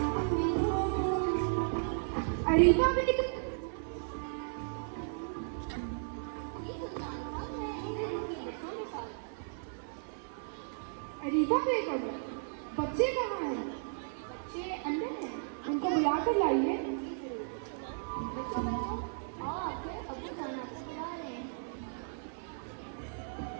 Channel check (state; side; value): silent; left; 55 dB below the other